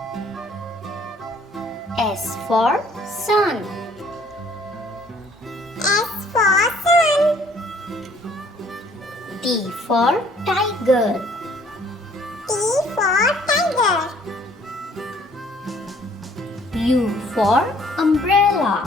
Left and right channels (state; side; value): normal; both; correlation 0.59